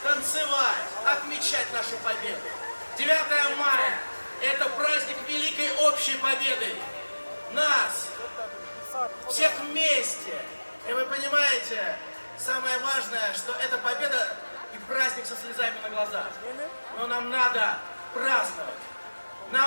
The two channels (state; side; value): inverted; both; correlation -1.00